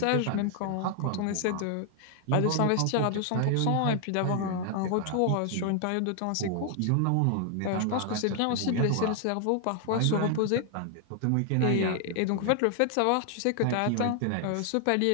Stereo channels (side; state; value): both; different; correlation 0.00